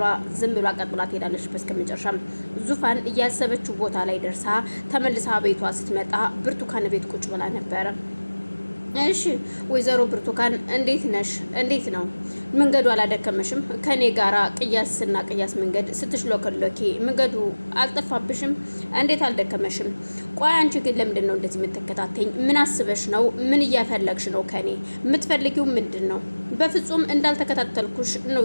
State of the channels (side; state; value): both; inverted; correlation -1.00